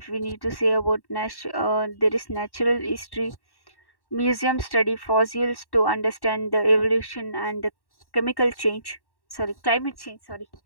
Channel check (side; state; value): right; late; 1.1 ms